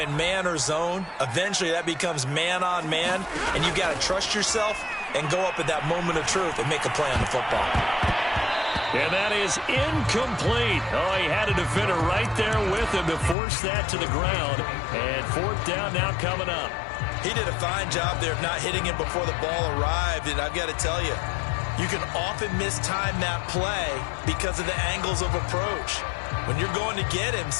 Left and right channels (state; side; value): drops out; right; at 13.4 s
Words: man or zone. Eventually that becomes man on man, and you've got to trust yourself and go up at that moment of truth and make a play on the football. And that is incomplete. Oh, he had a defender right there with him to force that to the ground. And fourth down now coming up. He did a fine job there of not hitting him before the ball arrived, and I've got to tell you, you can often mistime that play because of the angles of approach. When you're going to get him,